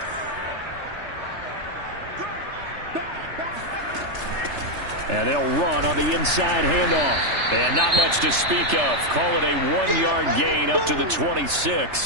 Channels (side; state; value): left; late; 3.3 ms